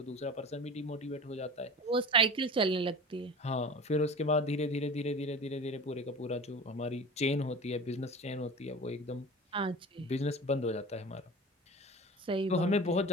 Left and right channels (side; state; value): both; normal; correlation 0.35